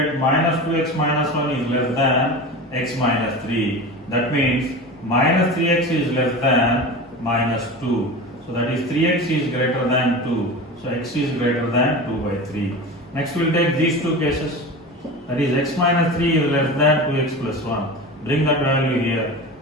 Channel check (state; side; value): normal; both; correlation 0.30